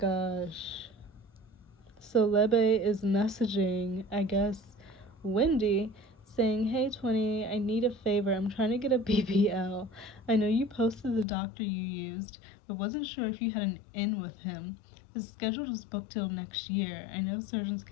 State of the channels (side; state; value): right; drops out; at 11.2 s